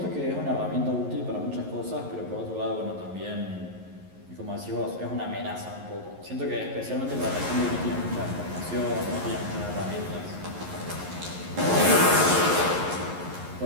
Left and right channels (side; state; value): left; late; 11 ms